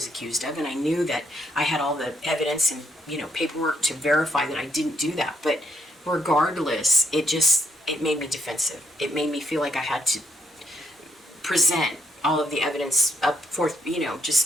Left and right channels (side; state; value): both; normal; correlation 0.74